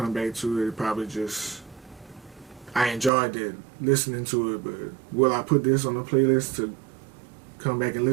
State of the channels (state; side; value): drops out; left; at 3.1 s